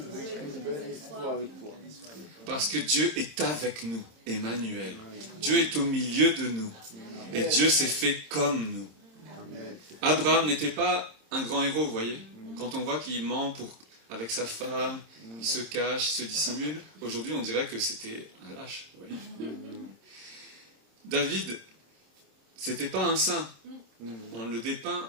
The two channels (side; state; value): left; late; 26 ms